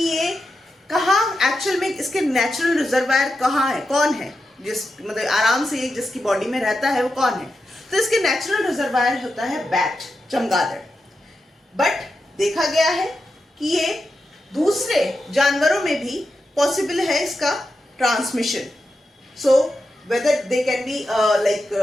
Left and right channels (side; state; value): both; normal; correlation 0.89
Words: ये कहाँ एक्चुअल में इसके नेचुरल रिजर्वायर कहाँ है, कौन है, जिस मतलब आराम से जिसकी बॉडी में रहता है, वो कौन है, तो इसके नेचुरल रिजर्वायर होता है बैट, चमगादड़। बट देखा गया है कि ये दूसरे जानवरों में भी पॉसिबल है इसका transmission. So whether they can be like